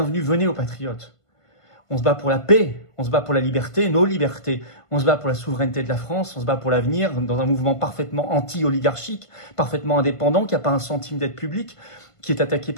venez aux patriotes. On se bat pour la paix, on se bat pour la liberté, nos libertés. On se bat pour la souveraineté de la France, on se bat pour l'avenir dans un mouvement parfaitement anti-oligarchique, parfaitement indépendant, qui n'a pas un centime d'aide publique, qui est attaqué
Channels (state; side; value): late; right; 1.5 ms